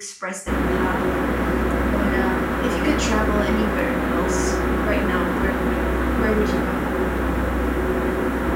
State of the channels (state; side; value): identical; both; correlation 1.00